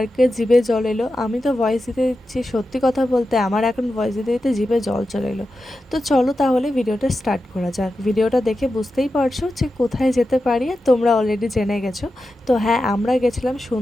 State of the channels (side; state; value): both; normal; correlation 0.91